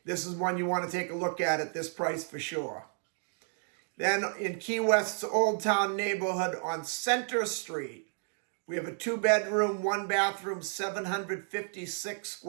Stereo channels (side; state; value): left; silent; 57 dB below the other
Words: this is one you want to take a look at this price for sure. Then in Key West's Old Town neighborhood on Center Street, we have a 2-bedroom, 1-bathroom, 756